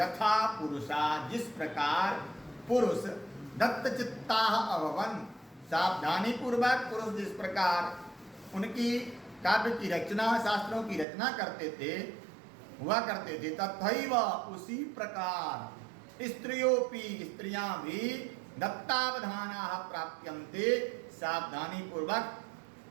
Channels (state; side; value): drops out; left; at 11.1 s